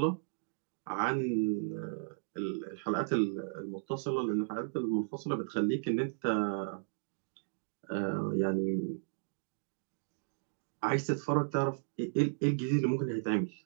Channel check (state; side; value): silent; left; digital silence